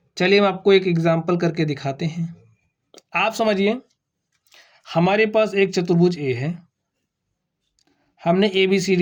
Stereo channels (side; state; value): both; identical; correlation 1.00